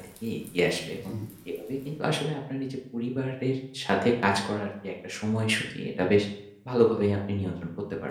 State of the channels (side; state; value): both; identical; correlation 1.00